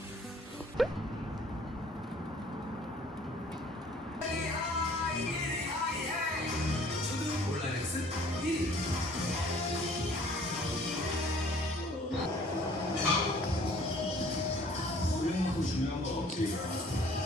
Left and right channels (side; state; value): both; normal; correlation 0.55